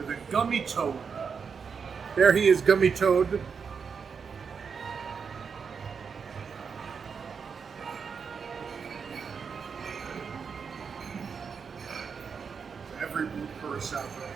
a gummy toad. There he is, Gummy Toad. Every blue curacao drink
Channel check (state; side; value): quieter; left; 6.0 dB